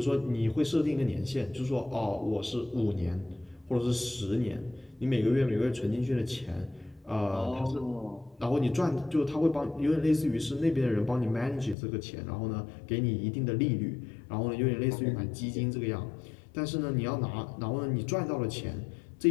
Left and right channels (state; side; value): drops out; right; at 11.8 s